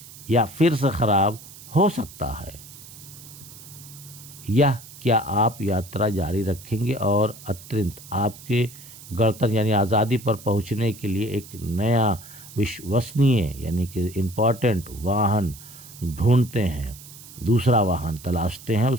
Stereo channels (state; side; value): noise; right; hiss, 17 dB below the sound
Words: या फिर से ख़राब हो सकता है? या क्या आप यात्रा जारी रखेंगे और अत्यंत आपके गणतंत्र यानी आज़ादी पर पहुंचने के लिए एक नया विश्वसनीय यानी कि इम्पॉर्टेंट वाहन ढूंढते हैं, दूसरा वाहन तलाशते हैं,